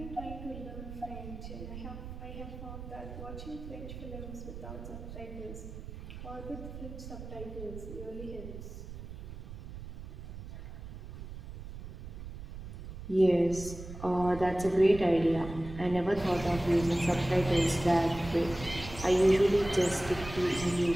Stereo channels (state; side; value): noise; right; rumble, 11 dB below the sound